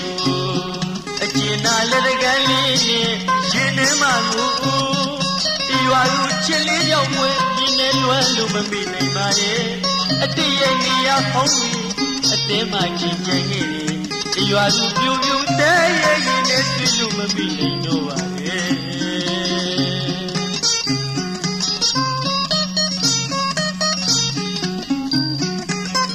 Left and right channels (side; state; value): left; noise; rumble, 27 dB below the sound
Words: ို့အကျဉ်းနာလက်တကန်းလေးနဲ့ရင်ထဲမှာကိုဒီရွာလူချစ်လေးကြောင့်ဝဲဒီနဲ့လွမ်းလို့မမိနိုင်ပါရဲ့အတည့်ရဲ့နေရာဖုံးပြီးအတင်းမှချင်းချင်ခဲ့တယ်ဒီရွာလူပြူပြူတဲရဲ့ရင်နဲ့တွေ့လို့မမိနိုင်တော့ပါရဲ့